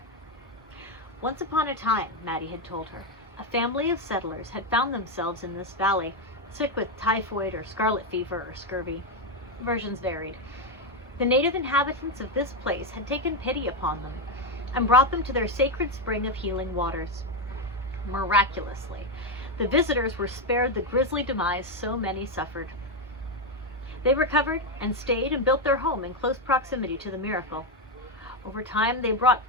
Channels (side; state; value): both; normal; correlation 0.07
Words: Once upon a time, Maddie had told her, a family of settlers had found themselves in this valley, sick with typhoid or scarlet fever or scurvy. Versions varied. The native inhabitants of this place had taken pity upon them and brought them to their sacred spring of healing waters. Miraculously, the visitors were spared the grisly demise so many suffered. They recovered and stayed and built their home in close proximity to the miracle. Over time, they brought